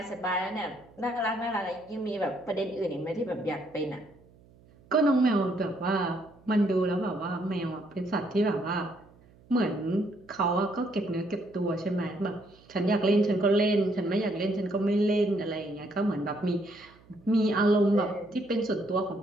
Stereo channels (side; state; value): right; noise; hum, 27 dB below the sound